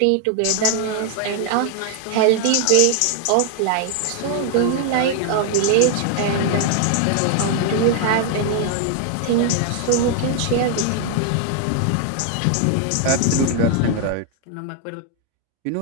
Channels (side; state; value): both; different; correlation 0.00